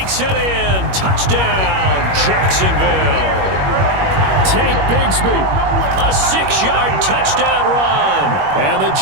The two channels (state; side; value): late; left; 21 ms